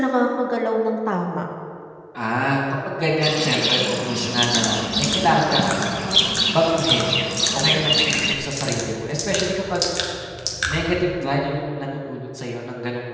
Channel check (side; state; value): both; identical; correlation 1.00